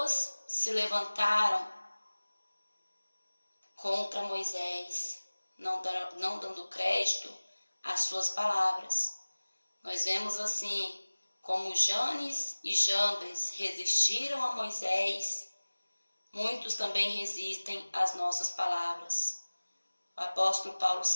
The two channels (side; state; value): both; inverted; correlation -1.00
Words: se levantaram contra Moisés, não dando crédito às suas palavras. Nós vemos assim como Janes e Jambres resistiram a Moisés, muitos também resistem às nossas palavras. O apóstolo Paulo